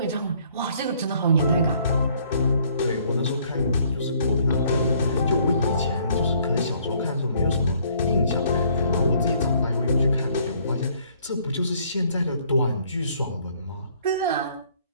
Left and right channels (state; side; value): inverted; both; correlation -0.63